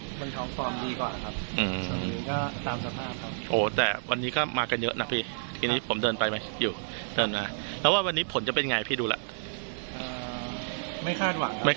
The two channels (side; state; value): left; silent; digital silence